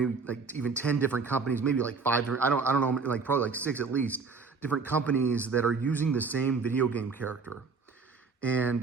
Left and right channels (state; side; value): quieter; left; 4.8 dB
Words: like even 10 different companies, maybe like 5, I don't know, like probably like 6 at least, different companies that are using the same video game character.